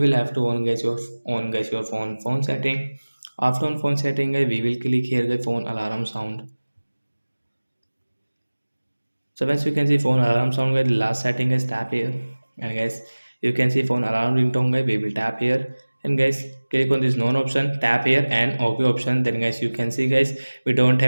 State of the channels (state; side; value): inverted; both; correlation -1.00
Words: will have to on guys your phone setting. After on phone setting guys, we will click here the phone alarm sound. So once you can see phone alarm sound guys, the last setting is tap here, and guys you can see phone alarm ringtone guys, we will tap here, and guys click on this none option, tap here and OK option. Then guys you can see guys we don't